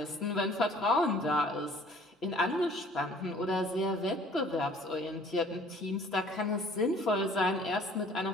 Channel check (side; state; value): both; normal; correlation 0.54